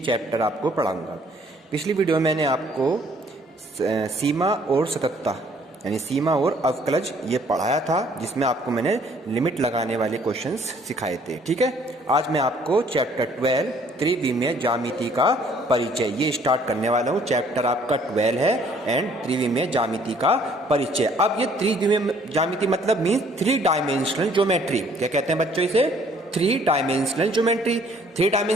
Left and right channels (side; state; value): both; normal; correlation 0.61